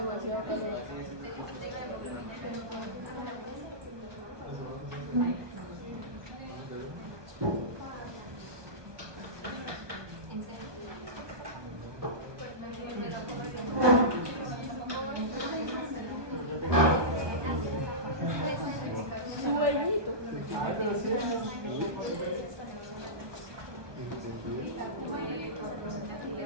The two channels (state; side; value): late; left; 1.2 ms